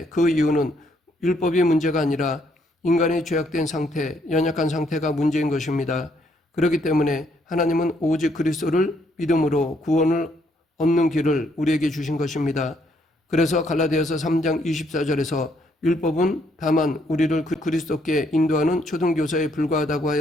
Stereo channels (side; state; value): both; normal; correlation 0.71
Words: 그 이유는 율법이 문제가 아니라 인간의 죄악된 상태, 연약한 상태가 문제인 것입니다. 그렇기 때문에 하나님은 오직 그리스도를 믿음으로 구원을 얻는 길을 우리에게 주신 것입니다. 그래서 갈라디아서 3장 24절에서 율법은 다만 우리를 그리스도께 인도하는 초등교사에 불과하다고